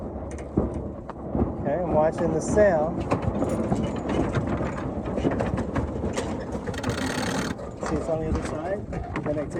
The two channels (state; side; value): identical; both; correlation 1.00